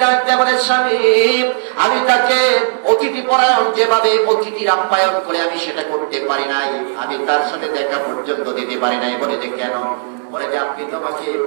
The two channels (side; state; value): left; silent; digital silence